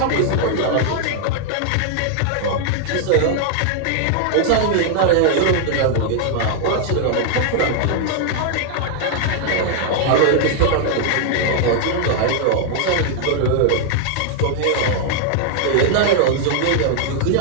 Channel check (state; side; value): different; both; correlation 0.00